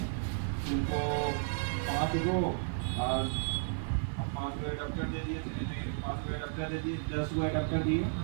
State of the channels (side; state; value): left; silent; digital silence